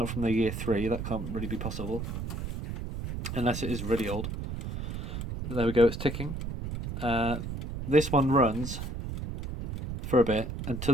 from the year 3. That can't really be possible unless it is really old. There we go, it's ticking. This one runs for a bit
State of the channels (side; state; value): right; noise; rumble, 5 dB below the sound